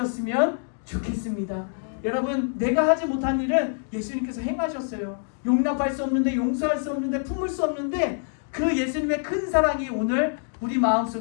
좋겠습니다. 여러분 내가 하지 못한 일은 예수님께서 행하셨어요. 용납할 수 없는데, 용서할 수 없는데, 품을 수 없는데 그 예수님의 큰 사랑이 오늘 우리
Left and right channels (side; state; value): right; silent; 61 dB below the other